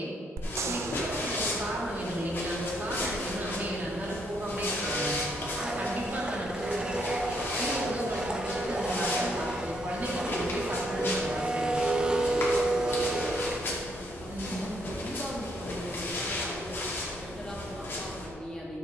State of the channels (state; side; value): normal; both; correlation 0.72